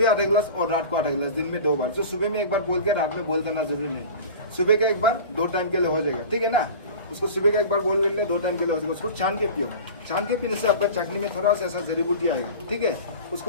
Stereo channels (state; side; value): inverted; both; correlation -0.36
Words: आधा गिलास और रात को आधा गिलास, दिन में 2 बार। जो सुबह में 1 बार बोल के रात में बोल करना जरूरी नहीं। सुबह का 1 बार 2 टाइम के लिए हो जाएगा, ठीक है ना। उसको सुबह का 1 बार बोल कर 2 टाइम के लिए हो जाएगा। उसको छान के पियो। छान के पीने से आपका चटनी में थोड़ा सा ऐसा जड़ी बूटी आएगा, ठीक है।